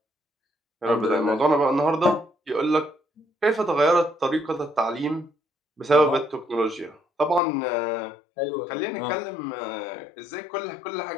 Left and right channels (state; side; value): drops out; right; at 7.4 s